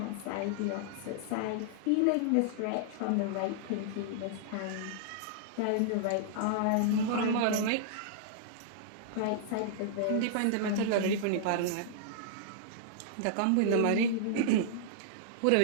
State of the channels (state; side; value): different; both; correlation -0.01